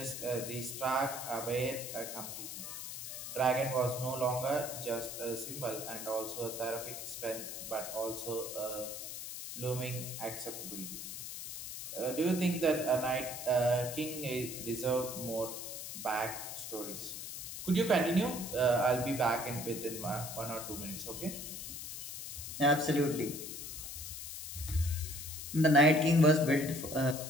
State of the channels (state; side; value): noise; left; hiss, 8 dB below the sound